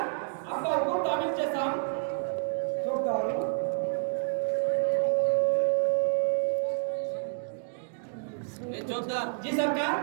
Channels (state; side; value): silent; left; digital silence